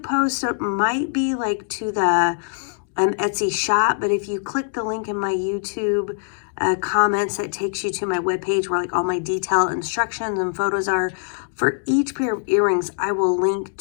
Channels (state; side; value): silent; right; digital silence